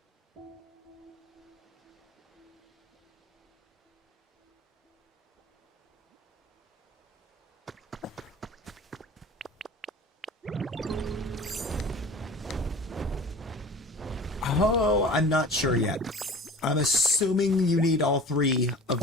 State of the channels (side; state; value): both; normal; correlation 0.40